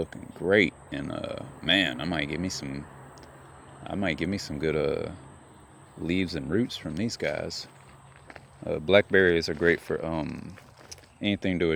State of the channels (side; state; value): both; identical; correlation 1.00